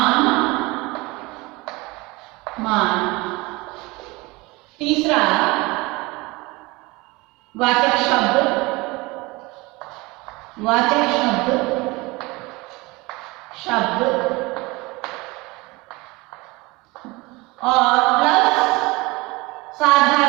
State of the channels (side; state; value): left; quieter; 23.3 dB